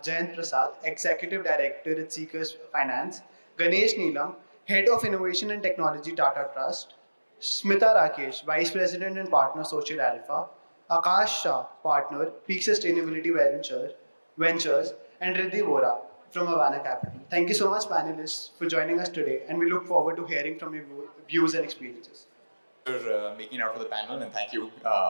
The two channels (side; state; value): both; inverted; correlation -1.00